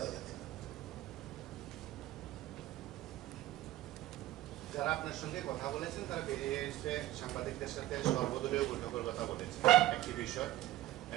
যাবে না। যারা আপনার সঙ্গে কথা বলেছেন তারা বেরিয়ে এসে সাংবাদিকদের সাথে সর্বদলীয় বৈঠকের কথা বলেছে। একটি বিষয়,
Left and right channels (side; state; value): left; quieter; 15.6 dB